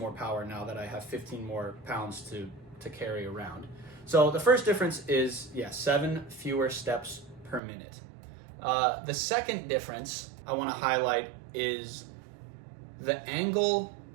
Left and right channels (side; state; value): left; drops out; at 7.6 s